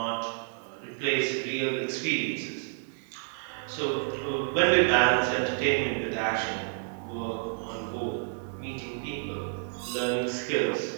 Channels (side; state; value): left; silent; 58 dB below the other